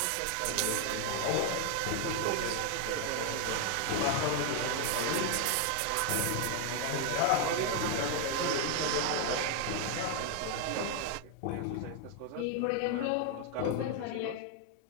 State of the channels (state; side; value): different; both; correlation 0.00